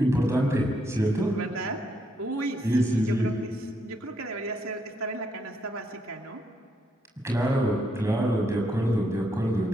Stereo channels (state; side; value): normal; both; correlation 0.76